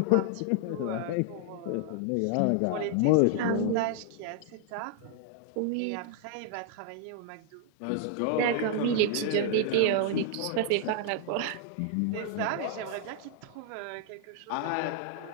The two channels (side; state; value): both; different; correlation 0.00